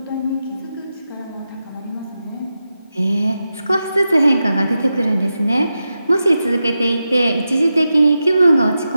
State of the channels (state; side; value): inverted; both; correlation -0.90